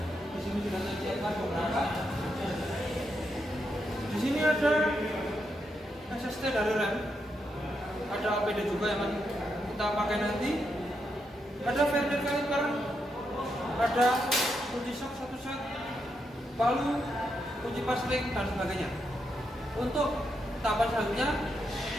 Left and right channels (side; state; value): both; normal; correlation 0.82